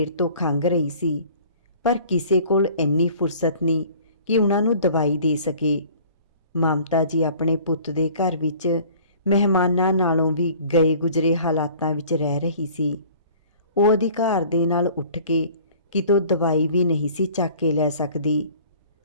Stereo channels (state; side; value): inverted; both; correlation -0.50